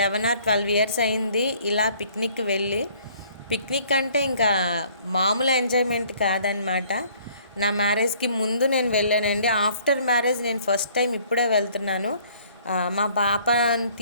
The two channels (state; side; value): inverted; both; correlation -0.58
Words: or 12 ఇయర్స్ అయింది ఇలా పిక్నిక్ వెళ్ళి. పిక్నిక్ అంటే ఇంకా మామూలు ఎంజాయ్మెంట్ కాదనమాట. నా మ్యారేజ్కి ముందు నేను వెళ్ళానండి. ఆఫ్టర్ మ్యారేజ్ నేను ఫస్ట్ టైం ఇప్పుడే వెళ్తున్నాను. మా పాపని